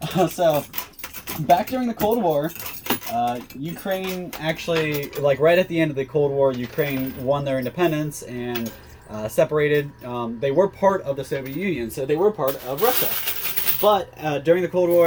So back during the Cold War, Ukraine actually, like right at the end of the Cold War, Ukraine won their independence and separated. They were part of the Soviet Union, so they were part of Russia. But during the Cold War,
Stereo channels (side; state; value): both; identical; correlation 1.00